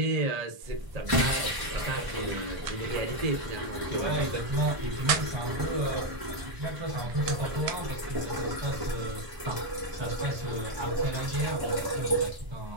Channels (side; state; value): left; late; 1.0 ms